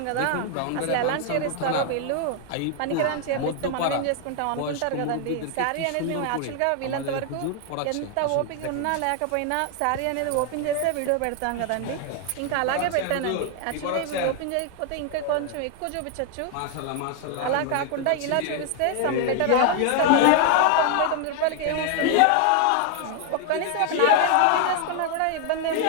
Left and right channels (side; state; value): both; different; correlation 0.00